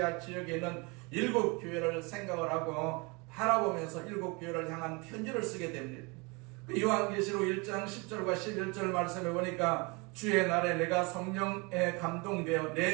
지역에 있는 7교회를 생각을 하고 바라보면서 7교회를 향한 편지를 쓰게 됩니다. 요한계시록 1장 10절과 11절 말씀에 보니까 주의 날에 내가 성령에 감동되어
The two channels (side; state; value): left; quieter; 28.4 dB